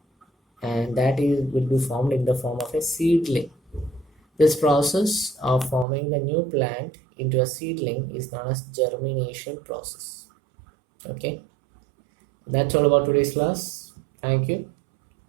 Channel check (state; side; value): drops out; left; at 5.9 s